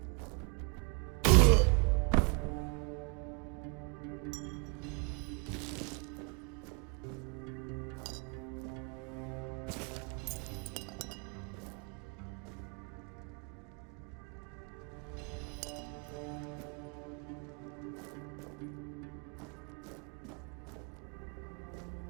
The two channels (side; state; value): left; quieter; 33.6 dB